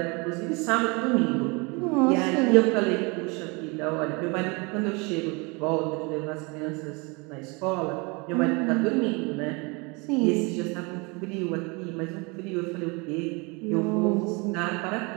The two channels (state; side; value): quieter; left; 28.8 dB